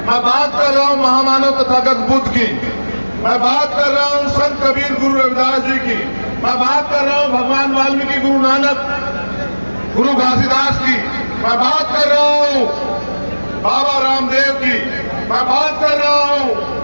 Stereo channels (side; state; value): both; inverted; correlation -1.00